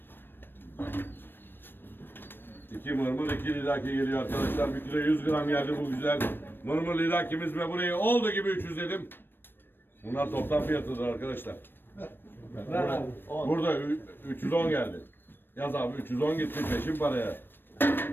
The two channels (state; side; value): late; right; 0.097 ms